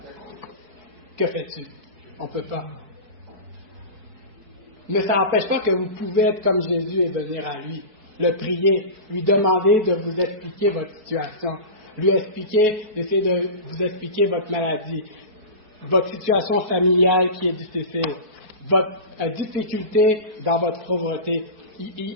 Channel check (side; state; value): left; late; 4.6 ms